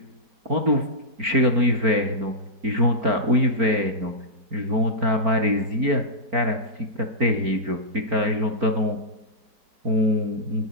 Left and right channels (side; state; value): left; late; 4.4 ms